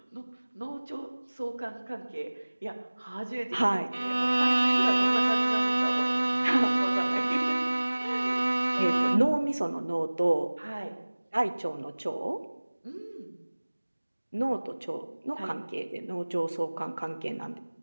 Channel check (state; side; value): inverted; both; correlation -1.00